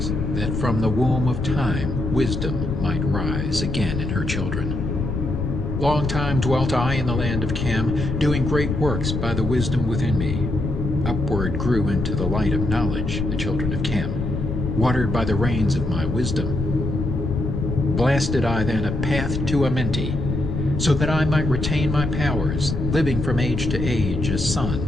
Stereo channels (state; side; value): noise; left; rumble, 2 dB below the sound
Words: that from the womb of time wisdom might rise again in her children. Long time dwelt I in the land of Cam, doing great works by the wisdom within me. Upward grew into the light of knowledge the children of Cam, watered by the rains of my wisdom. Blasted I then a path to Amenti, so that I might retain my powers, living from age to age as